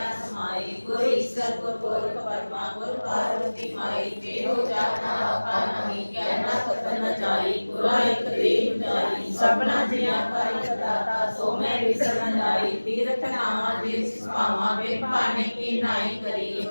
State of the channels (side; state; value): both; inverted; correlation -1.00